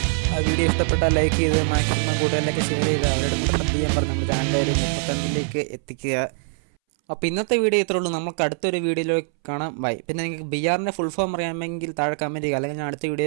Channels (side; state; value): left; silent; 63 dB below the other